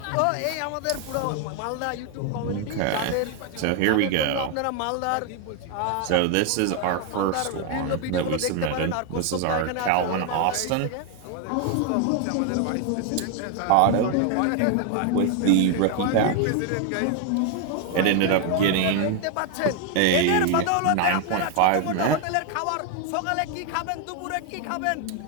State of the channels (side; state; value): both; different; correlation 0.01